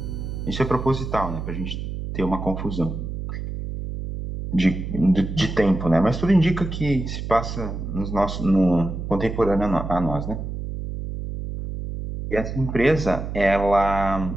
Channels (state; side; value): noise; right; hum, 6 dB below the sound